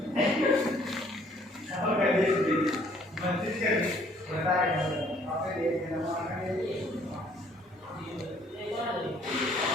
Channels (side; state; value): both; normal; correlation 0.61